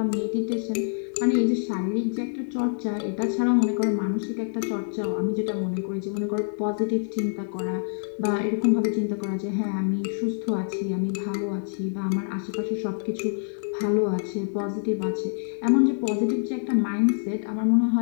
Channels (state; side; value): silent; right; digital silence